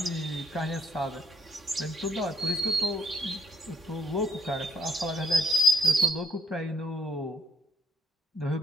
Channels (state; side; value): normal; both; correlation 0.71